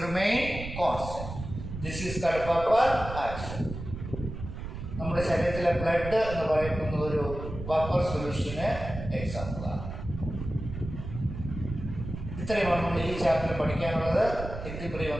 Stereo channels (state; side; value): noise; right; rumble, 8 dB below the sound